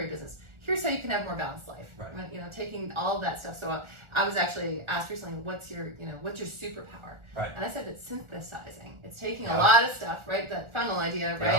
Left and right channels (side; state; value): left; late; 1.4 ms